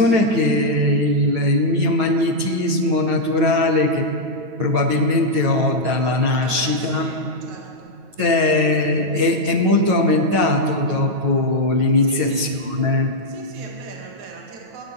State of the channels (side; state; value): left; late; 9.2 ms